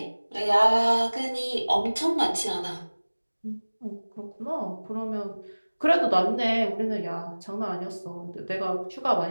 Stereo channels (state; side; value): inverted; both; correlation -1.00